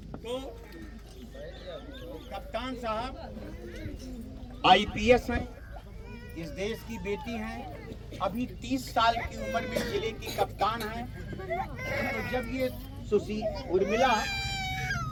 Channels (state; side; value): identical; both; correlation 1.00